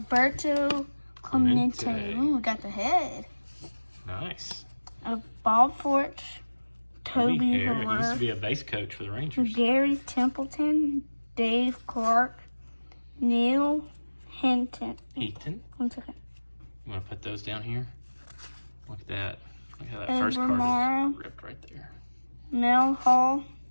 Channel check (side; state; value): both; inverted; correlation -1.00